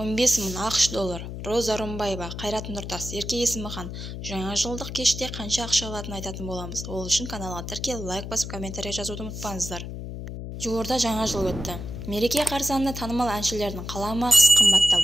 мың ақш доллар. Роза Рымбаева, Қайрат Нұртас, Ерке Есімхан. Жаңа жылдық кеште қанша ақша алатынын айтатын боламыз. Ол үшін каналға тіркеліп, лайк басып, комментарий жазуды ұмытпаңыздар. Жуырда жаңа жыл өтті. Мереке қарсаңында танымал әншілердің қаламақысы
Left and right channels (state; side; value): noise; left; hum, 8 dB below the sound